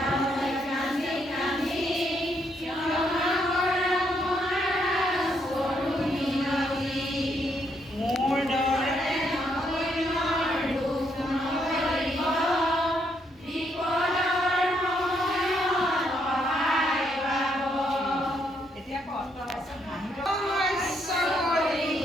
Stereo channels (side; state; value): both; normal; correlation 0.74